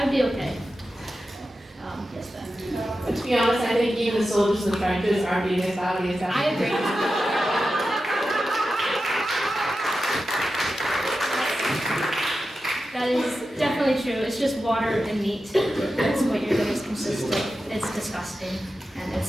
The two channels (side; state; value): both; normal; correlation 0.92